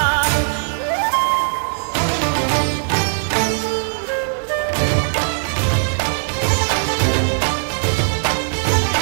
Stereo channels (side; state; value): left; silent; digital silence